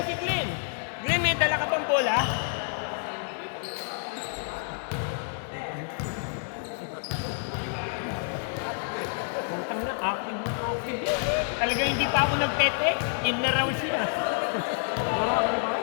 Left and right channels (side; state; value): right; silent; 59 dB below the other